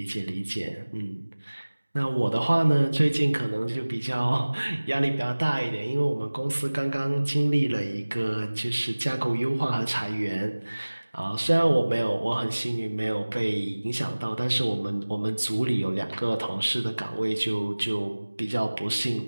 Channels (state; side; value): inverted; both; correlation -1.00